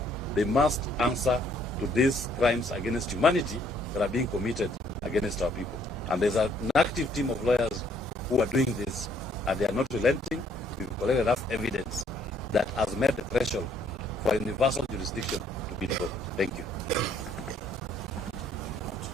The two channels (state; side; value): normal; both; correlation 0.65